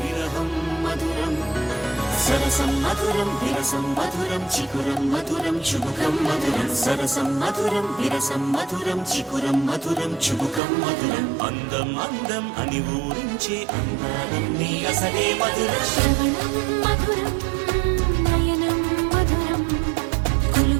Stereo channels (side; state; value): left; drops out; at 10.6 s